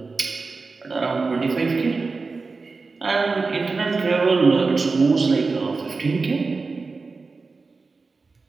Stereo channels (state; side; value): quieter; left; 4.1 dB